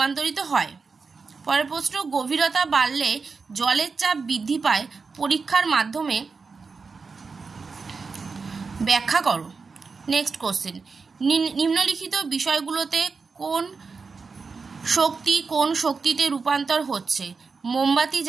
হয়? পরের প্রশ্ন গভীরতা বাড়লে জলের চাপ বৃদ্ধি পায়, পরীক্ষার মাধ্যমে ব্যাখ্যা করো। নেক্সট কোশ্চেন নিম্নলিখিত বিষয়গুলোতে কোন শক্তিতে রূপান্তর হচ্ছে? মোমবাতি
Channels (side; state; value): left; quieter; 4.8 dB